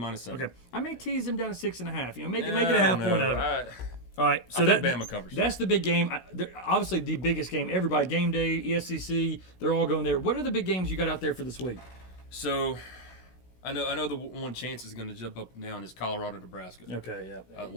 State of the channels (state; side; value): late; right; 16 ms